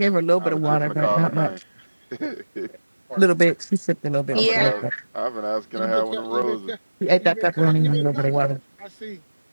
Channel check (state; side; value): inverted; both; correlation -1.00